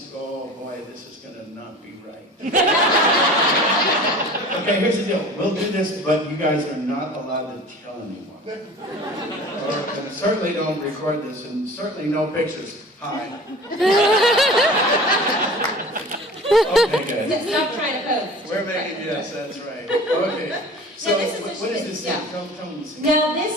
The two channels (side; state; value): both; normal; correlation 0.41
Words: oh boy, this is going to not be right. Okay, here's the deal. We'll do this, but you guys are not allowed to tell anyone. And certainly don't record this, and certainly no pictures. Hi. Okay, good. Stop trying to pose. We're making, yes, that's right. Okay. So, this is what is this scene? yeah. Tell me the scene. Now, this